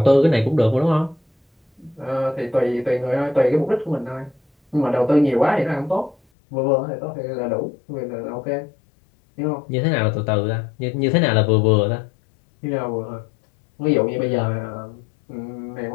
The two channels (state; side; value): drops out; right; at 6.2 s